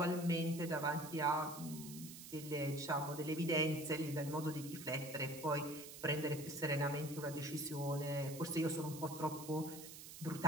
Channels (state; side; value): noise; right; hiss, 12 dB below the sound